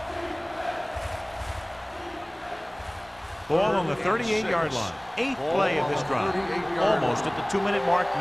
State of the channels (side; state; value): left; noise; rumble, 29 dB below the sound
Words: Ball on the 38-yard line. 8th play of this drive. Almost at the 2-minute mark